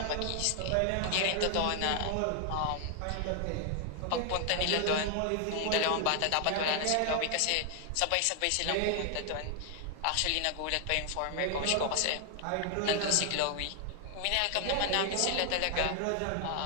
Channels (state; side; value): different; both; correlation 0.00